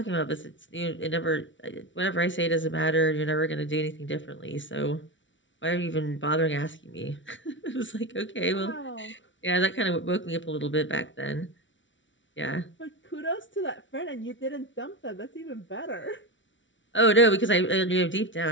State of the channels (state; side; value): late; right; 0.55 ms